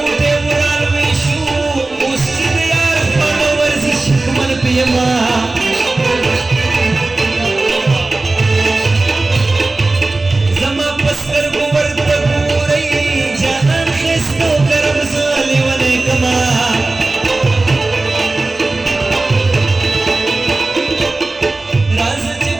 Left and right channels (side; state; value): left; quieter; 3.2 dB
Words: उराल विशू उस्तिद यार फॉलोवर्स शिकमन पियमा जमा पस्कर गोवर्त पूरई जहान खिस्तो करम साले वने कमा